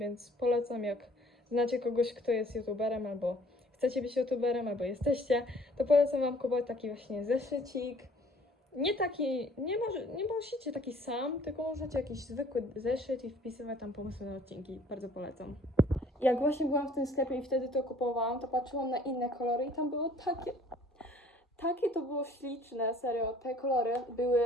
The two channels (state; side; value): normal; both; correlation 0.56